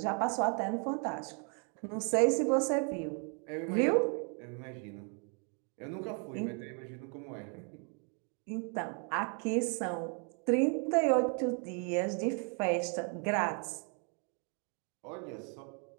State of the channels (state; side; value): quieter; left; 39.0 dB